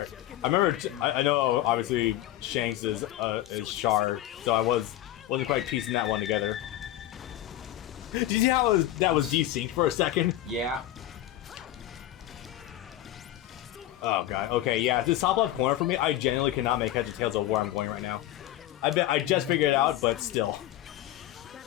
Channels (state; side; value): quieter; right; 13.8 dB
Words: I remember. I know. Obviously, Shanks is Char, so I wasn't quite piecing that one together. Did you see how that was desynced for a second? Yeah. Oh god. Okay. Yeah. This top left corner for me, I genuinely cannot make heads or tails of where I'm going right now. I just figured it out, but still.